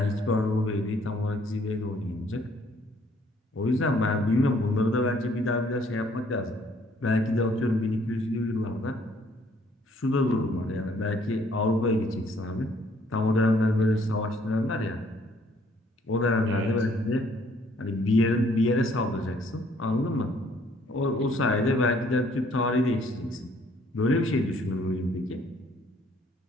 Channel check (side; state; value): both; normal; correlation 0.62